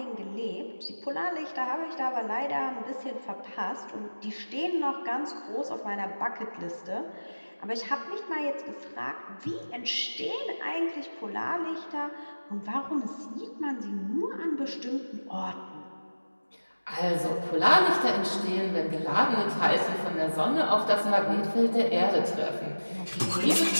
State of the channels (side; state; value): both; inverted; correlation -1.00